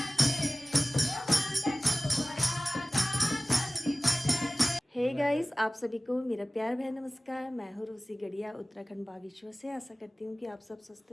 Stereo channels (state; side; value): normal; both; correlation 0.97